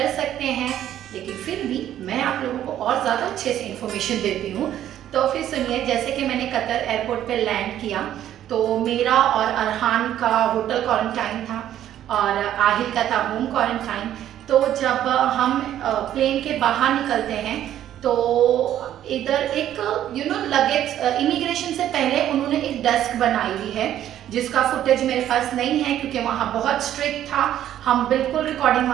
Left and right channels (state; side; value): quieter; left; 11.6 dB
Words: सकते हैं। लेकिन फिर भी मैं आप लोगों को और ज़्यादा अच्छे से इंफॉर्मेशन देती हूँ। तो फिर सुनिए, जैसे कि मैंने कतर एयरपोर्ट पे लैंड किया तो मेरा और अरहान का होटल क्वारंटाइन था और आहिल का था होम क्वारंटाइन। तो जब हम प्लेन के बाहर निकलते हैं तो इधर एक लगेज इमिग्रेशन से पहले उन्होंने एक डेस्क बनाई हुई है जिसका फुटेज मेरे पास नहीं है क्योंकि वहाँ बहुत स्ट्रिक्ट था। हम बिल्कुल रिकॉर्डिंग